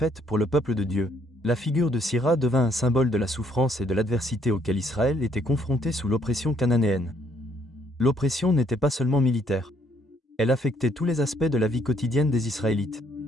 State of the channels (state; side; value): normal; both; correlation 0.67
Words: pour le peuple de Dieu. La figure de Sisera devint un symbole de la souffrance et de l'adversité auquel Israël était confronté sous l'oppression cananéenne. L'oppression n'était pas seulement militaire. Elle affectait tous les aspects de la vie quotidienne des Israélites.